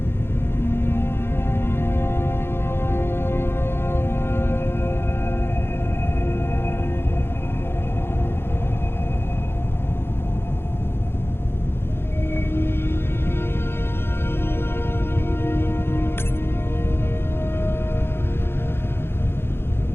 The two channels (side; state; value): right; late; 0.11 ms